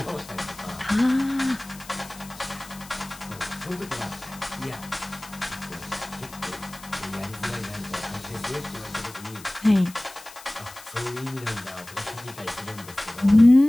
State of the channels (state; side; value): noise; left; hiss, 18 dB below the sound